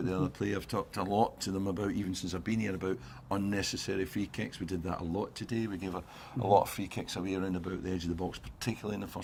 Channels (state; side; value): identical; both; correlation 1.00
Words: the other player. I've talked a lot to them about, even since I've been here, about unnecessary free kicks. We did that a lot today. We gave a lot of free kicks away around about the edge of the box, particularly in the